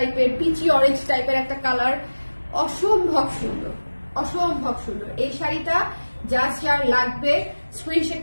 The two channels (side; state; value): both; inverted; correlation -1.00